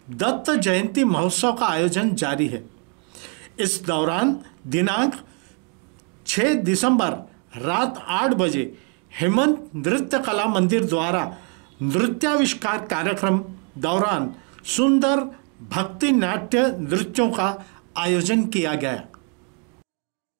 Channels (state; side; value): quieter; left; 35.6 dB